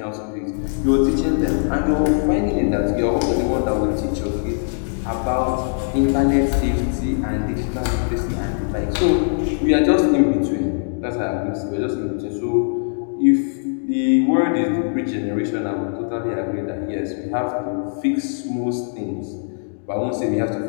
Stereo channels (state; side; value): silent; right; digital silence